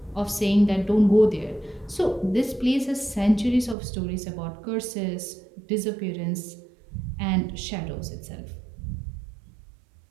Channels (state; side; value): drops out; left; at 3.8 s